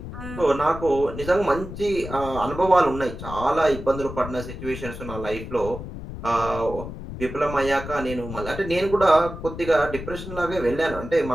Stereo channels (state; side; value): noise; left; rumble, 10 dB below the sound